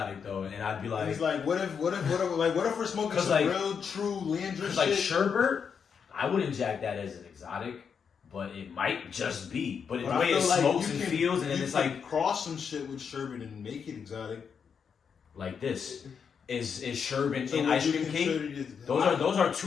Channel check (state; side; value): quieter; right; 6.7 dB